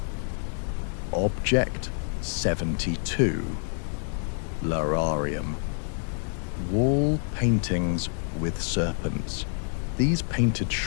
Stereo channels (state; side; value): silent; right; 60 dB below the other